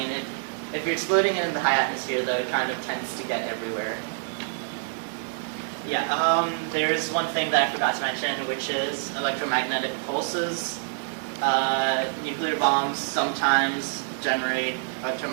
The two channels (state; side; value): silent; left; 57 dB below the other